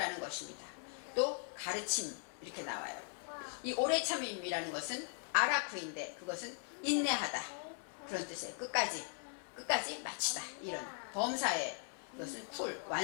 것입니다. 또 가르침 이렇게 나와요. 이 오래 참음이라는 것은 아라쿠인데 그것은 인내하다 그런 뜻이에요. 끝까지 마치다 이런 범사에 이것은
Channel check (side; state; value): right; silent; 51 dB below the other